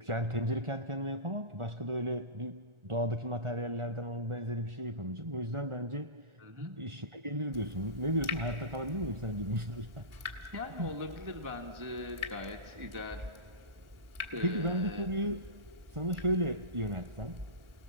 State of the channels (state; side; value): late; left; 1.4 ms